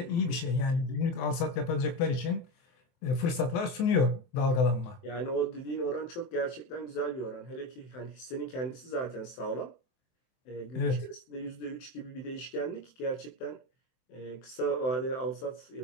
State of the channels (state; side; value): late; right; 23 ms